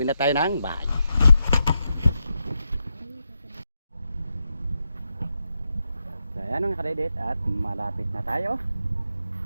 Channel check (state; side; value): inverted; both; correlation -0.86